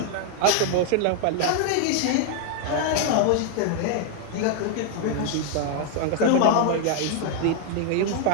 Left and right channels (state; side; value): different; both; correlation 0.00